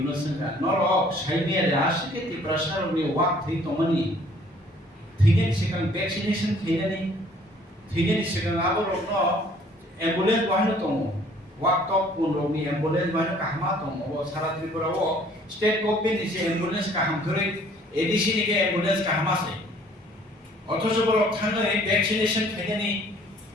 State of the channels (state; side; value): normal; both; correlation 0.57